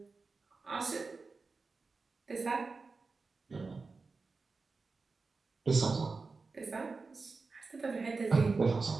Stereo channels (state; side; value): quieter; left; 4.2 dB